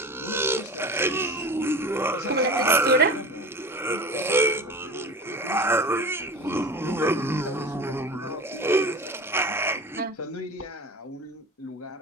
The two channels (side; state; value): both; normal; correlation 0.34